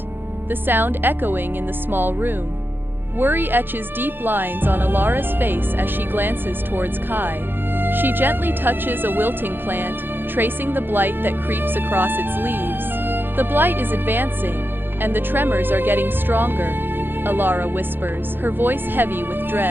the sound echoing in the small room. Worry etches deep lines on Alara's face as she glances towards Kai. She gently touches a wilting plant, tracing the blight that creeps across its leaves. The blight is advancing, and the tremors are getting stronger, Alara whispers, her voice heavy with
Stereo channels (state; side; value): late; left; 0.099 ms